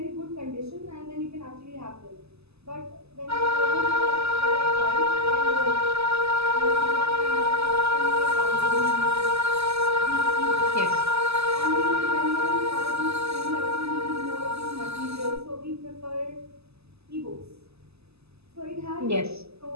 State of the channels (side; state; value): left; late; 0.79 ms